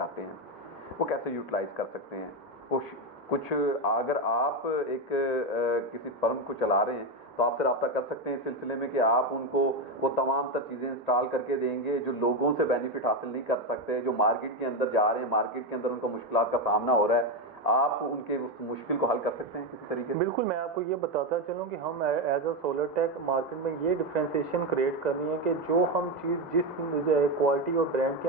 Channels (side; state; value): both; normal; correlation 0.10